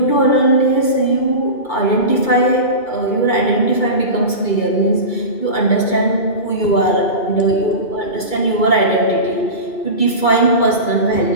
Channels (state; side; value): late; right; 2.2 ms